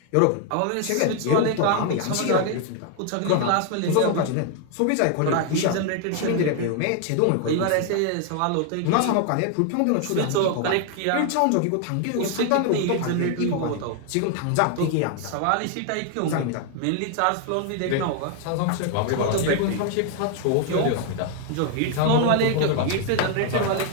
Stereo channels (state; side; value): different; both; correlation 0.00